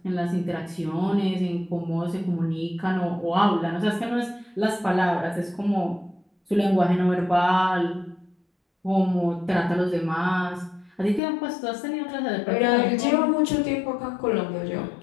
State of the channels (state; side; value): drops out; right; at 11.2 s